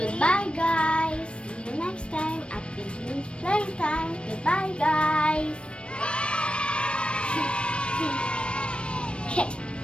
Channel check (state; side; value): late; right; 0.058 ms